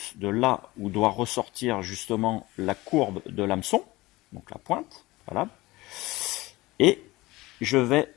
de là où doit ressortir justement la courbe de l'hameçon, donc la pointe, voilà. Et je vais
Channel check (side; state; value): right; quieter; 20.0 dB